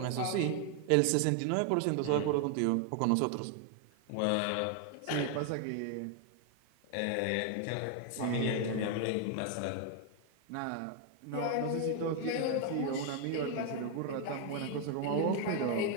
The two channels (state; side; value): different; both; correlation 0.00